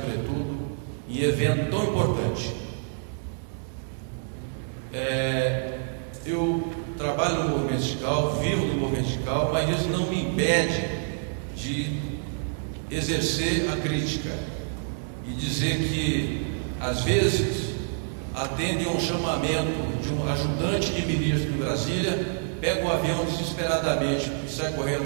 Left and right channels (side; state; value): left; silent; 60 dB below the other